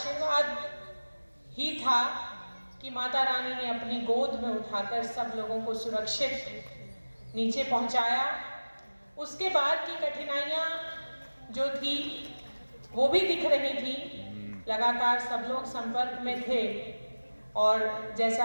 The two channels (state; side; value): inverted; both; correlation -1.00